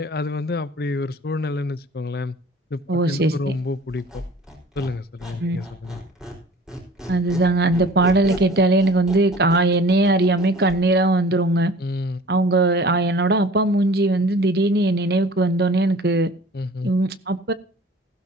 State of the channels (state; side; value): normal; both; correlation 0.46